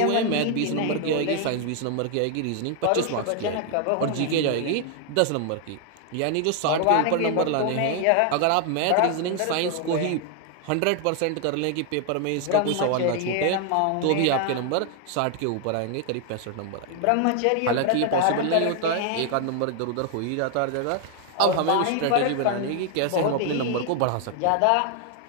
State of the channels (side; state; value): both; different; correlation 0.00